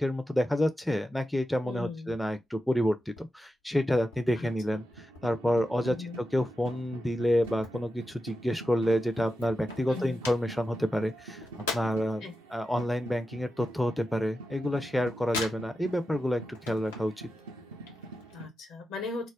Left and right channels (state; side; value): normal; both; correlation 0.90